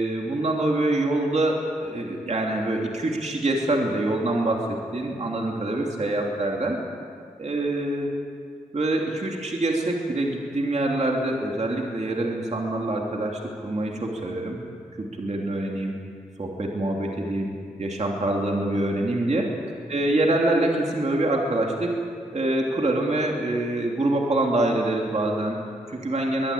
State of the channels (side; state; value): both; normal; correlation 0.73